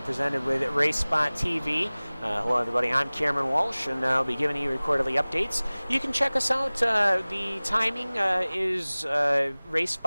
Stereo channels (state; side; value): inverted; both; correlation -1.00